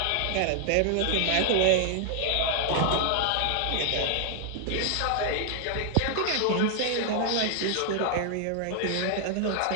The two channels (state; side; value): different; both; correlation 0.00